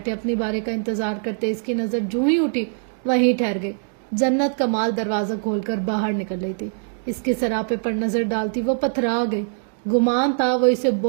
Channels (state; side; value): silent; left; digital silence